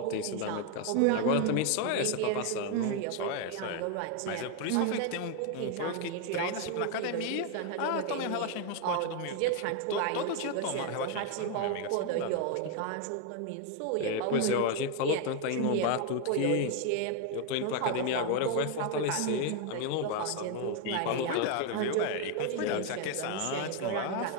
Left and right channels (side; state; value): both; different; correlation 0.01